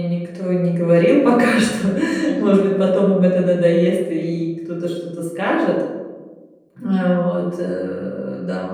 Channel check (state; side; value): identical; both; correlation 1.00